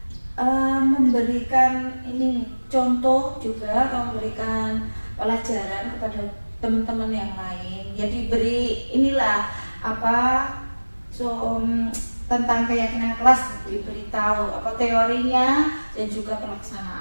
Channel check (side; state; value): both; inverted; correlation -1.00